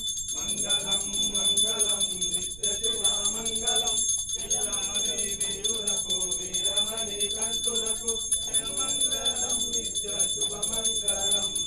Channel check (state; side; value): noise; right; rumble, 14 dB below the sound